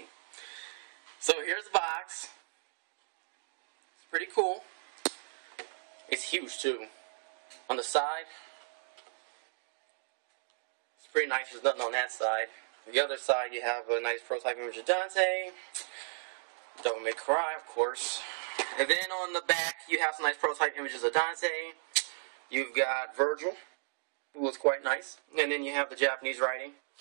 So here's the box. It's pretty cool. It's huge too. On the side, it's pretty nice, there's nothing on that side. On the other side you have a nice prototype image of Dante, Devil May Cry of course. And then on the back you have some nice prototype images of Dante. You've got Virgil, who looks quite nice, and then you have the Japanese writing.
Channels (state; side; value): silent; left; digital silence